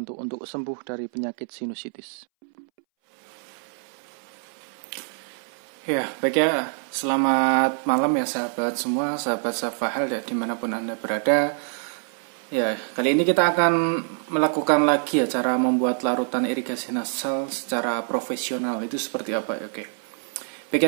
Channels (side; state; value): left; silent; 61 dB below the other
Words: untuk sembuh dari penyakit sinusitis. Ya, baik ya. Selamat malam ya sahabat semua, sahabat Safa Health ya, dimanapun Anda berada. Ya, kali ini kita akan melakukan lagi ya cara membuat larutan irigasi nasal secara profesional. Itu seperti apa ya? Oke. Baik